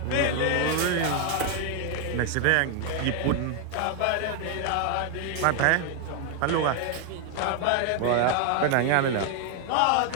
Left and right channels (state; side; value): different; both; correlation 0.01